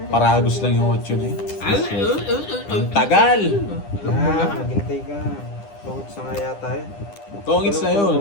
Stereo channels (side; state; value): right; late; 9.9 ms